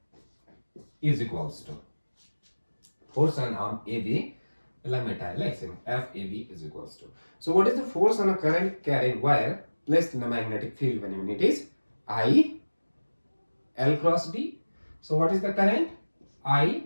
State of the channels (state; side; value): inverted; both; correlation -1.00